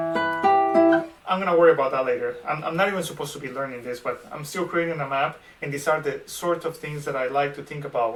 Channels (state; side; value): identical; both; correlation 1.00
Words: I'm gonna worry about that later. I'm not even supposed to be learning this, but I'm still creating a map, and these are the sort of things that I like to think about